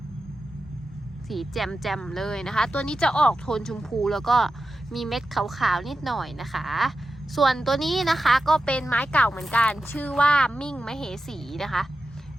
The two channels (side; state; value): both; normal; correlation 0.91